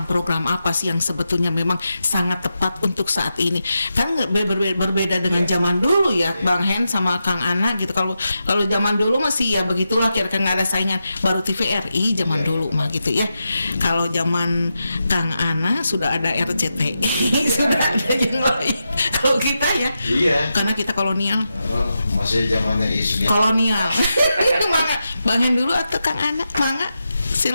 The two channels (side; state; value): both; inverted; correlation -0.88